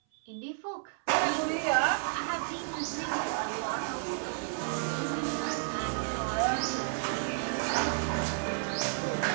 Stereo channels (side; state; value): left; silent; 57 dB below the other